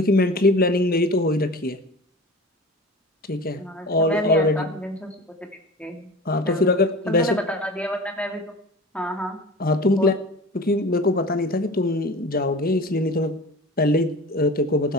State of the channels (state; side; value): normal; both; correlation 0.36